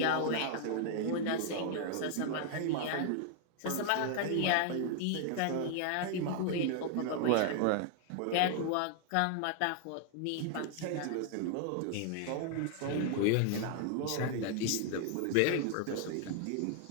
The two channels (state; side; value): different; both; correlation 0.00